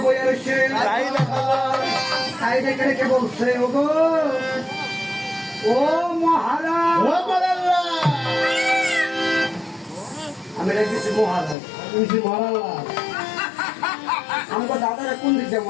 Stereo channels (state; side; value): drops out; right; at 11.6 s